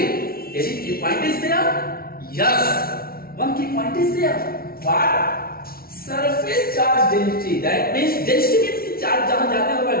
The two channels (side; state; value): right; late; 0.44 ms